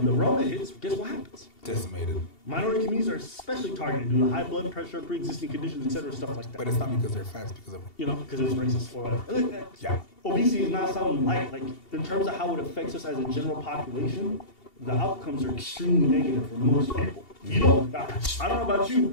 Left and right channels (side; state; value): right; late; 2.7 ms